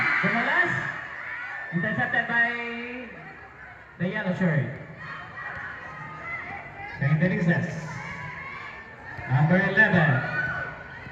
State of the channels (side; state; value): both; identical; correlation 1.00